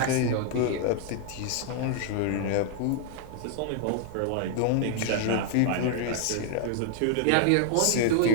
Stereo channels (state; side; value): different; both; correlation -0.01